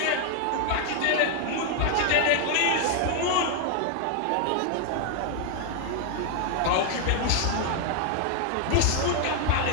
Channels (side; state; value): both; different; correlation 0.00